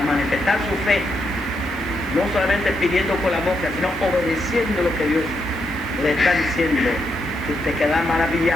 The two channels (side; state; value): both; normal; correlation 0.81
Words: manifestar su fe, no solamente pidiendo con la boca, sino obedeciendo lo que Dios le está diciendo tú te quedas